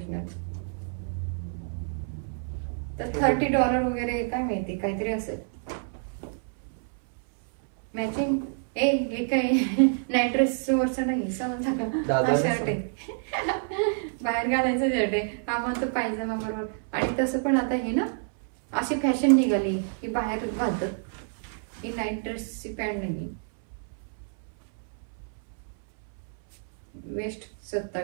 तर $30 वगैरे काय माहिती, काहीतरी असेल. मॅचिंग हे काय नाईट ड्रेस वरचं नाही, समजलं का? हा शर्ट आहे, बाहेर घालायचं शर्ट आहे. हा म्हणतो पायजमा बरोबर. आणि तसं पण आता हे ना अशी फॅशन निघाली की बाहेर घालतात. ही नाईट ड्रेसची पॅन्ट नाही. वेस्ट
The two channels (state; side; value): silent; left; 59 dB below the other